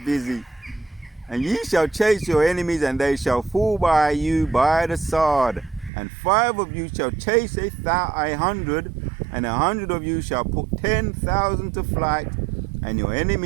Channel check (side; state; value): left; drops out; at 5.9 s